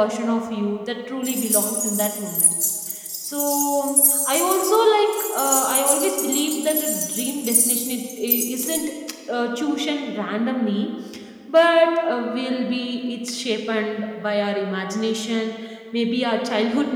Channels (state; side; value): identical; both; correlation 1.00